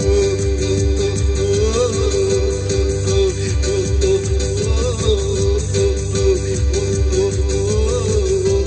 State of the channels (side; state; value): both; identical; correlation 1.00